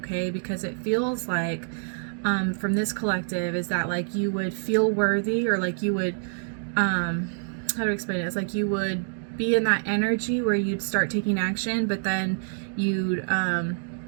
because it feels like from this collective is that like you would feel worthy, or like you would how to explain it, it's like you would be in that energy where you'd start taking action, but then you'd kind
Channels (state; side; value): silent; left; digital silence